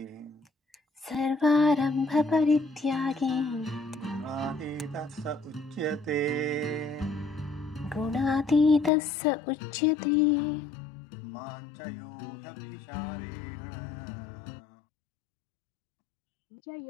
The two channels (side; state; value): right; drops out; at 8.9 s